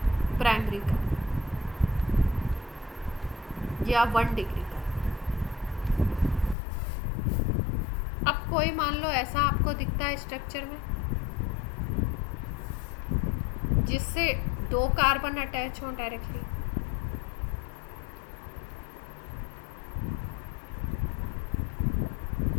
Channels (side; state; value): right; drops out; at 6.6 s